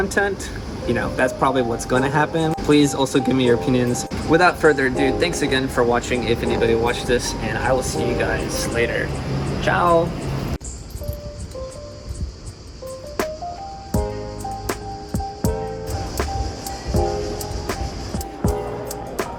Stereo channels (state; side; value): identical; both; correlation 1.00